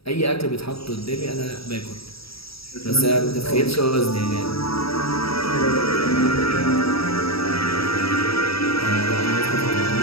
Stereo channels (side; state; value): right; late; 0.76 ms